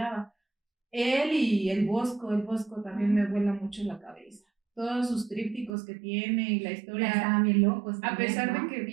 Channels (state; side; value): drops out; left; at 5.7 s